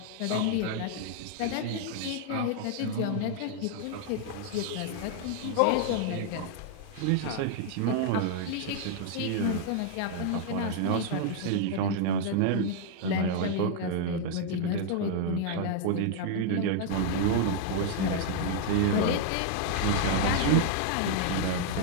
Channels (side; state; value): both; different; correlation 0.00